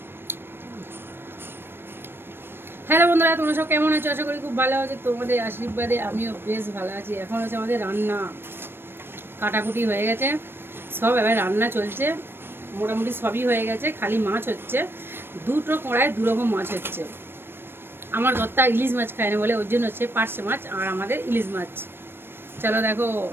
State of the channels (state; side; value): late; left; 0.11 ms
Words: হ্যালো বন্ধুরা, তোমরা সব কেমন আছো? আশা করি খুব ভালো আছে। তোমাদের আশীর্বাদে আমিও বেশ ভালো আছি। এখন হচ্ছে আমাদের রান্না, কাটাকুটি হয়ে গেছে সব, এবার রান্না চলছে। মোটামুটি সবই হয়ে গেছে, খালি মাছ হচ্ছে। দুটো কড়ায় দুরকম মাছ হচ্ছে। আমার দত্তা ইলিশ মাছ খায় না বলে ওর জন্য হচ্ছে পার্শে মাছ, আর আমাদের ইলিশ মাছ। চলো দেখো,